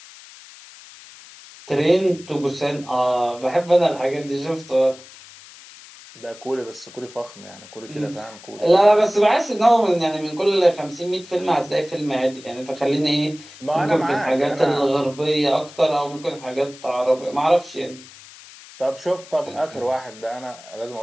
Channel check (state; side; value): noise; left; hiss, 20 dB below the sound